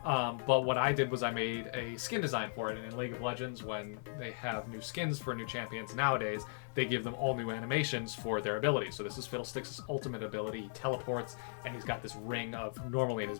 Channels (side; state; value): right; silent; 53 dB below the other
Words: But what I did was I made a skin design for it. And in League of Legends, when they have new skins for new champions nowadays, they give them all new animations for their abilities. So this is Fiddlesticks' ultimate ability. He teleports, and he's got this ring of, normally in his